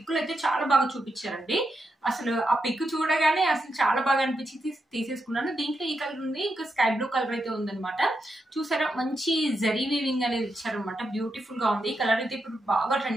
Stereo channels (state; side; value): normal; both; correlation 0.84